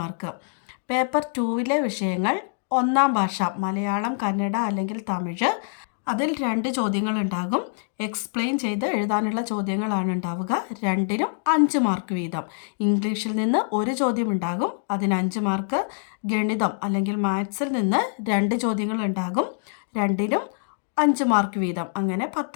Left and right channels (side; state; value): right; silent; digital silence